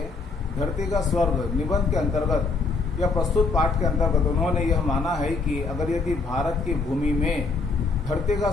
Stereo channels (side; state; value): right; quieter; 4.1 dB